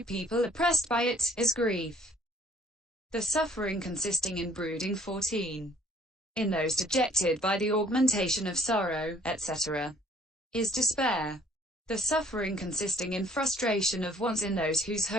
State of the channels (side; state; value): both; normal; correlation 0.58